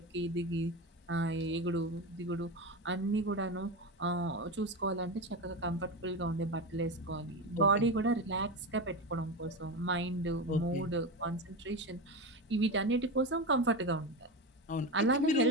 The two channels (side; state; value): both; normal; correlation 0.20